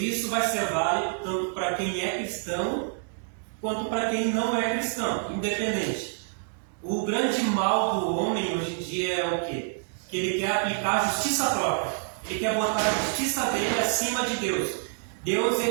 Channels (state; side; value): silent; left; digital silence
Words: vai ser válido tanto para quem é cristão quanto para quem não é cristão, independente. O grande mal do homem hoje em dia é o quê? Que ele quer aplicar a justiça própria. Ele quer botar a justiça dele acima de Deus. Deus,